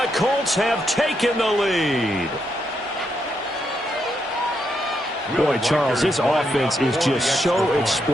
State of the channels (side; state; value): both; normal; correlation 0.80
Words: Colts have taken the lead. Boy, Charles, this offense is just so